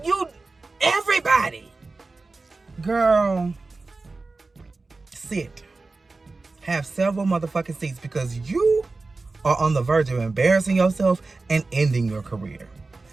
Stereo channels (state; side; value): quieter; left; 3.6 dB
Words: everybody. Girl, sit. Have several motherfucking seats because you are on the verge of embarrassing yourself and ending your career.